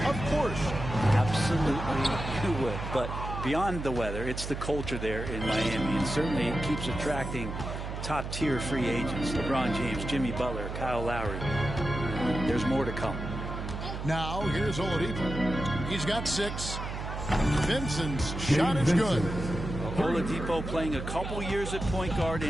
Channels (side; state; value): right; noise; hum, 6 dB below the sound